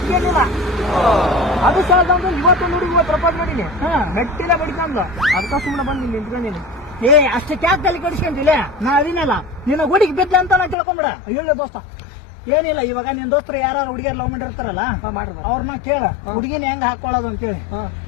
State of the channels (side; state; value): right; drops out; at 10.8 s